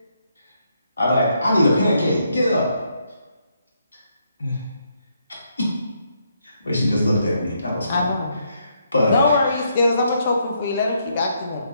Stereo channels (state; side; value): inverted; both; correlation -0.75